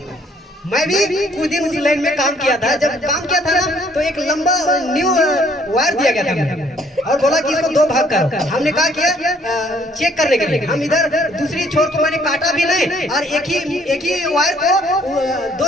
मैं भी कुछ दिन उस लाइन में काम किया था। जब काम किया था ना, तो एक लंबा न्यू वायर दिया गया था और बोला कि इसको 2 भाग करो। हमने कहा किया चेक करने के लिए। हम इधर दूसरी छोर को मैंने काटा भी नहीं, और एक ही वायर को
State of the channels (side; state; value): both; normal; correlation 0.63